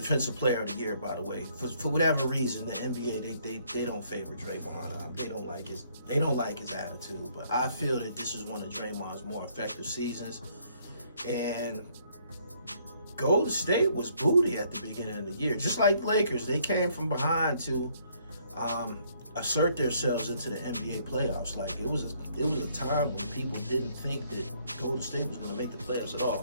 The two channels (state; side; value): inverted; both; correlation -0.66